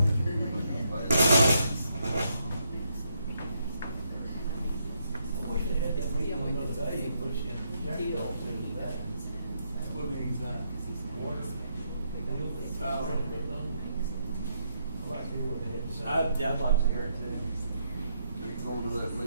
I wish they had that meeting on another day, in which Jack Dole said it was that. What means that? Water. Oh. I'd like to hear what they had to say. I'd like to hear it too. you going to that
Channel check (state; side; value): inverted; both; correlation -0.77